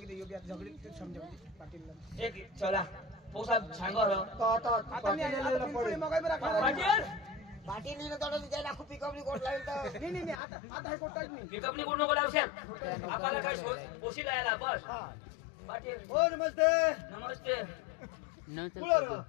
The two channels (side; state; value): right; drops out; at 10.4 s